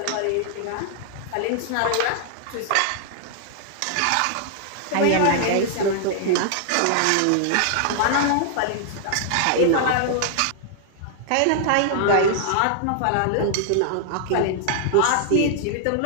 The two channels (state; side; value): different; both; correlation 0.00